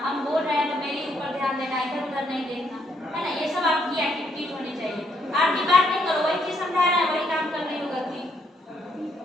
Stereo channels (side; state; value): both; normal; correlation 0.73